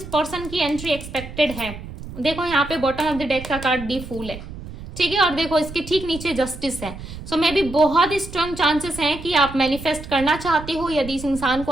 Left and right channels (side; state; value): right; noise; rumble, 12 dB below the sound